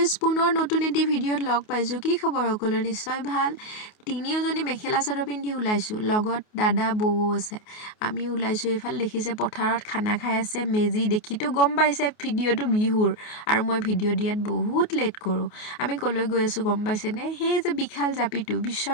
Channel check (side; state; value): right; late; 28 ms